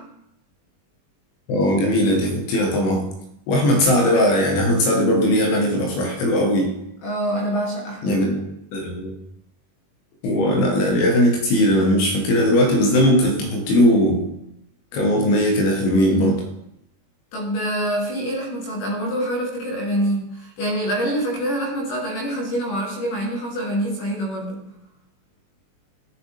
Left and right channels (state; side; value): late; right; 21 ms